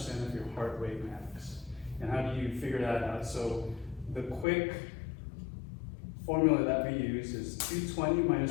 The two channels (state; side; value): drops out; right; at 4.5 s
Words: of your heart rate max. And how do you figure that out? So the quick formula that we use is 220